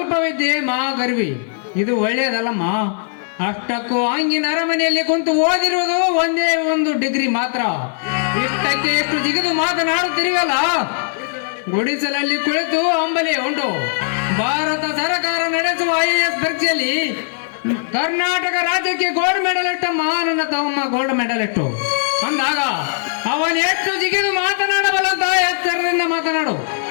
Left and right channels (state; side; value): silent; right; digital silence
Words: ವಿದ್ಯೆ ಮಾ ಗರ್ವಿ, ಇದು ಒಳ್ಳೆಯದಲ್ಲಮ್ಮ. ಅಷ್ಟಕ್ಕೂ ಹಂಗಿನ ಅರಮನೆಯಲ್ಲಿ ಕುಂತು ಓದಿರುವುದು ಒಂದೇ ಒಂದು ಡಿಗ್ರಿ ಮಾತ್ರ. ಇಷ್ಟಕ್ಕೆ ಎಷ್ಟು ಜಿಗಿದು ಮಾತನಾಡುತ್ತಿರುವಲ್ಲ. ಗುಡಿಸಲಲ್ಲಿ ಕುಳಿತು ಅಂಬಲಿ ಉಂಟು. ಭಾರತ ಸರ್ಕಾರ ನಡೆಸುವ IAS ಪರೀಕ್ಷೆಯಲ್ಲಿ ಕರ್ನಾಟಕ ರಾಜ್ಯಕ್ಕೆ ಗೋಲ್ಡ್ ಮೆಡಲ್ ಇಟ್ಟಮ್ಮ ನನ್ನ ತಮ್ಮ, ಗೋಲ್ಡ್ ಮೆಡಲ್ ಇಟ್ಟು. ಅಂದಾಗ ಅವನು ಎಷ್ಟು ಜಿಗಿದು ಮಾತನಾಡಬಲ್ಲಂತ ಎಚ್ಚರದಿಂದ ಮಾತನಾಡು.